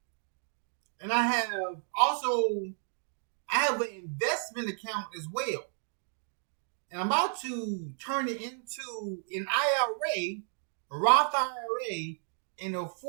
And I have an investment account as well. And I'm about to turn it into an IRA, a Roth IRA, and a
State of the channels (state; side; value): silent; left; 56 dB below the other